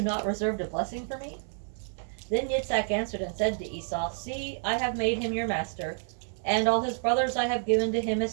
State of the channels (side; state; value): left; silent; digital silence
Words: not reserved a blessing for me? Then Yitzhak answered and said to Esau, See, I have made him your master, and all his brothers I have given to him